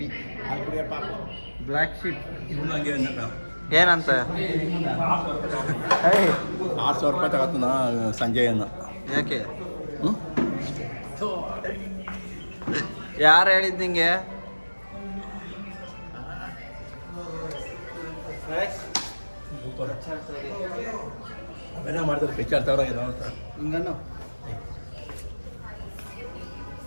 ಬ್ಲ್ಯಾಕ್ ಶೀಪ್ ಏನಂತ? ₹6,000 ತಗೋತಾನ ಸಂಜೆಯನ್ನು. ಯಾಕೆ? ಯಾರು ಹೇಳಿದ್ ನಿಂಗೆ? ಅವೆಲ್ಲ ಮಾಡ್ತಾರೆ ಪಿಕ್ಚರ್ ತಗೊಳ ಹಿಂಗನ್ನು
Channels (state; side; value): inverted; both; correlation -1.00